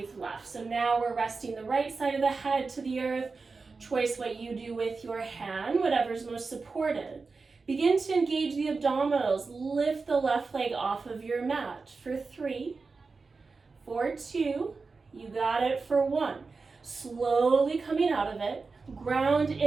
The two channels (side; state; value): left; quieter; 4.3 dB